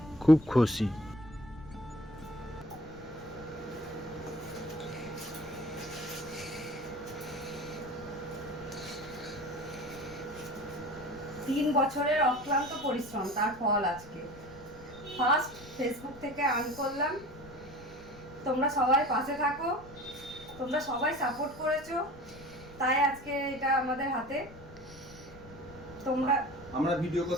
খুব খুশি। 3 বছরের অক্লান্ত পরিশ্রম তার ফল আজকে। ফার্স্ট ফেসবুক থেকে আর্ন করলাম। তোমরা সবাই পাশে থাকো, তোমরা সবাই সাপোর্ট করেছো, তাই আজকে এটা আমাদের হাতে। আমরা ভিডিও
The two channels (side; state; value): left; noise; rumble, 18 dB below the sound